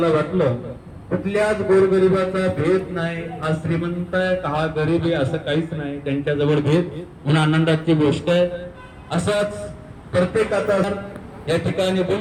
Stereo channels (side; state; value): both; identical; correlation 1.00